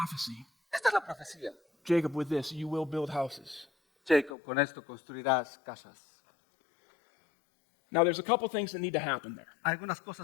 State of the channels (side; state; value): right; drops out; at 4.3 s